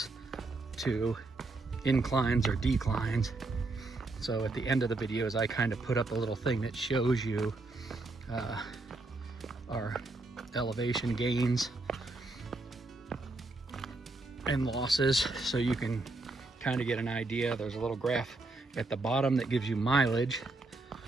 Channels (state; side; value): quieter; left; 3.2 dB